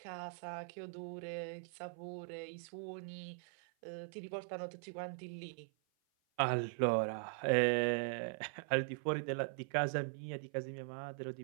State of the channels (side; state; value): left; silent; 50 dB below the other